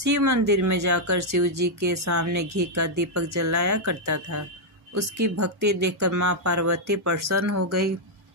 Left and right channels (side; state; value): both; normal; correlation -0.02